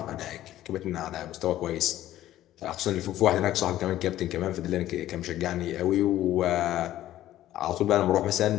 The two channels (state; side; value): quieter; right; 13.6 dB